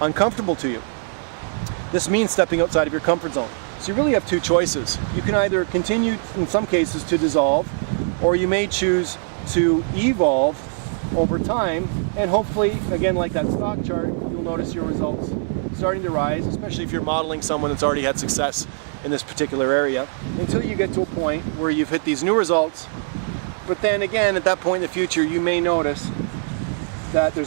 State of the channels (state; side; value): silent; left; digital silence